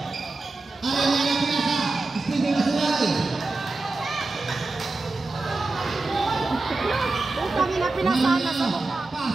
Arellano pinasa. Steve Masulay. Kami na pinasana sa mukha.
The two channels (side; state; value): left; quieter; 3.4 dB